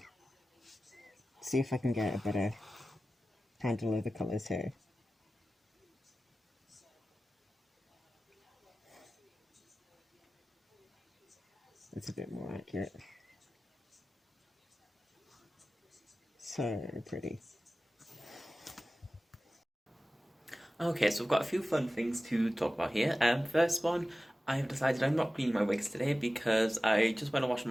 See if I can get a better handle of the colours here. It's a bit more accurate. So pretty. Okay, so I've got a few fun things to talk about here. First one, I have decided I'm not cleaning my wigs today because I just went and washed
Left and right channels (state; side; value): normal; both; correlation 0.95